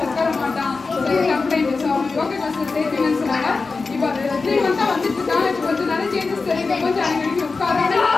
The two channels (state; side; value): quieter; right; 4.2 dB